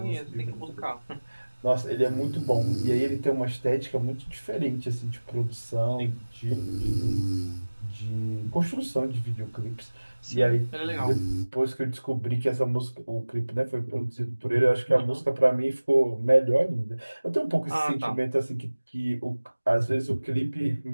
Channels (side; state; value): both; inverted; correlation -1.00